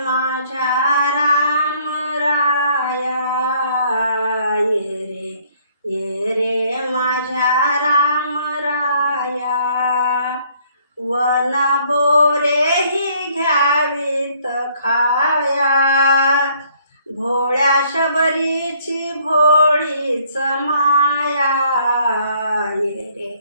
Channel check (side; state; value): both; inverted; correlation -0.63